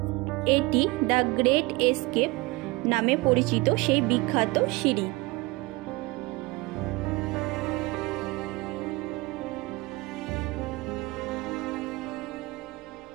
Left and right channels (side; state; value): left; quieter; 23.0 dB